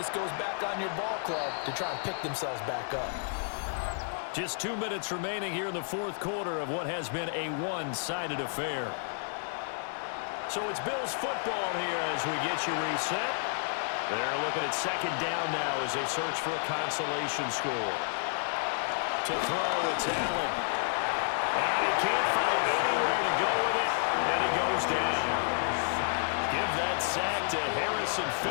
goes back on your ball club to try and pick themselves back up. Just 2 minutes remaining here in the 4th quarter of what has been a one-sided affair. So it's Bills football here as we get you reset. They're looking at 2nd down now as they search for a consolation score. To throw, it's Allen. And he can't find anywhere to go with it, and he goes down. Give that sack to Harrison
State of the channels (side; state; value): right; silent; digital silence